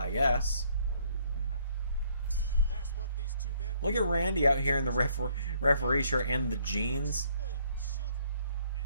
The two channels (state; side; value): inverted; both; correlation -0.65